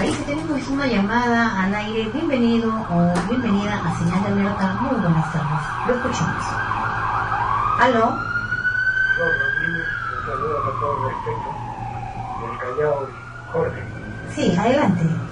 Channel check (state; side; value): identical; both; correlation 1.00